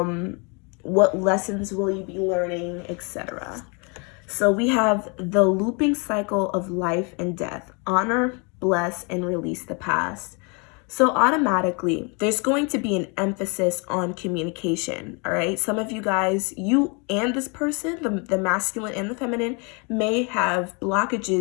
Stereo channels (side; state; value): right; quieter; 32.9 dB